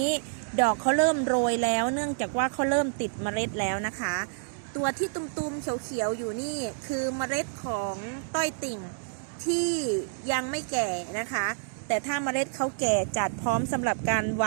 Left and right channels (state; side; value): silent; left; 59 dB below the other